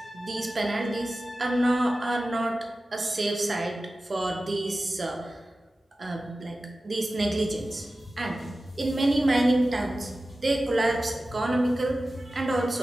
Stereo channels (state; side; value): normal; both; correlation 0.95